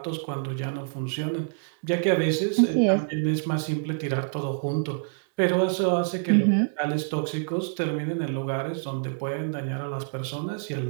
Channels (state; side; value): silent; left; digital silence